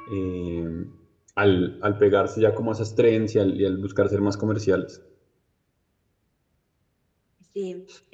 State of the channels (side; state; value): both; identical; correlation 1.00